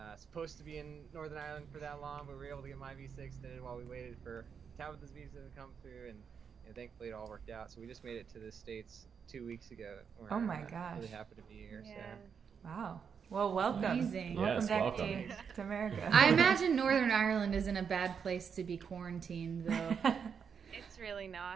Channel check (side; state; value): left; quieter; 6.7 dB